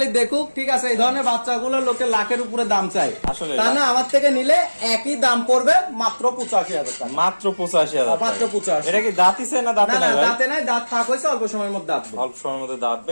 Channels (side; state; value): both; inverted; correlation -1.00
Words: দেখুক, ঠিক আছে। এই ধরনের বাচ্চাগুলো লোকে লাখের উপরে দাম চায়, আসলে তা না। আমার থেকে নিলে একই দাম পড়বে মাত্র 85,000 টাকা। মাত্র 85,000, মাত্র 85। এটা কি দাঁতিছে না দাঁতে নাই? দাঁতে নাই, দাঁত ফাঁক হয়েছে, অল্প সময়ের মধ্যে দাঁতবে। অল্প সময়ের মধ্যে দাঁতবে।